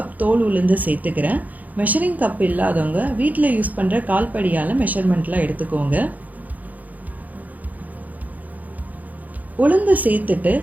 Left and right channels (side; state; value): left; late; 0.079 ms